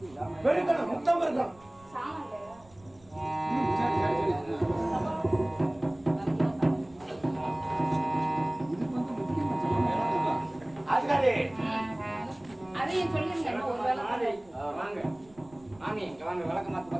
வெறுக்கணும் முத்தம் இருக்கணும். சாமான் அதுக்காரி அதையும் சொல்லிருங்க. ஒரு வேலை வாங்க மாமி இங்க வாங்க. விளக்கமாத்து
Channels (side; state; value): right; noise; rumble, 27 dB below the sound